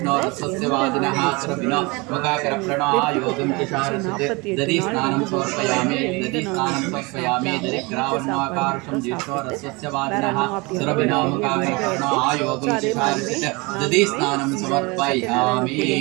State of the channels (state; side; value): quieter; left; 26.2 dB